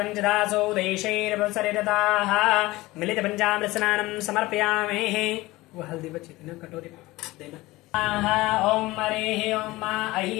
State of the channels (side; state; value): right; quieter; 19.6 dB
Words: देशैरवसरिरताः मिलितपञ्चामृतस्नानं समर्पयामि। वो हल्दी बची थी ना कटोरी देना। ॐ हरिः ॐ